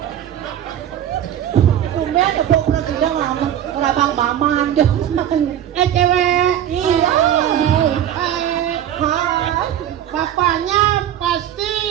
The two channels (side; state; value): left; quieter; 10.7 dB